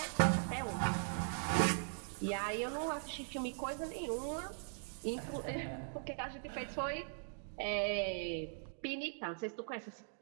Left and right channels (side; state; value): left; silent; digital silence